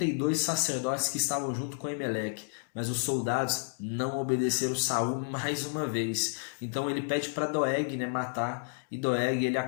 sacerdotes que estavam junto com Aimeleque. Mas os soldados não obedeceram Saul mais uma vez. Então ele pede para Doeg, né, matar, e Doeg ele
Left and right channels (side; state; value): right; silent; digital silence